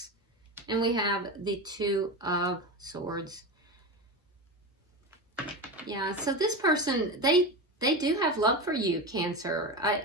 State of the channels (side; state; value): both; normal; correlation 0.21